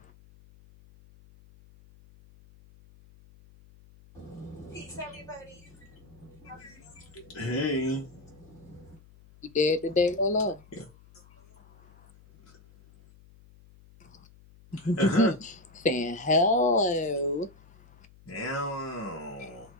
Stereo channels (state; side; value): noise; left; hum, 25 dB below the sound